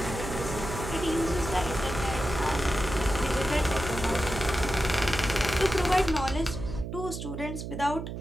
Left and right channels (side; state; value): right; noise; hum, 7 dB below the sound